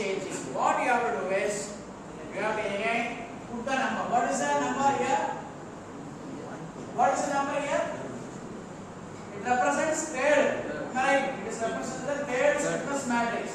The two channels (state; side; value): identical; both; correlation 1.00